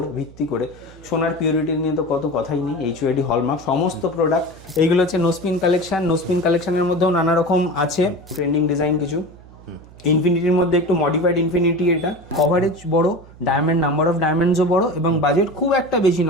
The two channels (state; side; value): noise; right; hum, 22 dB below the sound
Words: ভিত্তি করে সোনার পিউরিটি নিয়ে তো কত কথাই নেই। HUID হলমার্ক সমস্ত প্রোডাক্ট। এইগুলো হচ্ছে নোস্পিন কালেকশন। নোস্পিন কালেকশনের মধ্যেও নানা রকম আছে ট্রেন্ডিং ডিজাইন কিছু। ইনফিনিটির মধ্যে একটু মডিফাইড ইনফিনিটি, এটা কভারেজ বড়, ডায়মন্ড নাম্বার অফ ডায়মন্ডসও বড় এবং বাজেট খুব একটা বেশি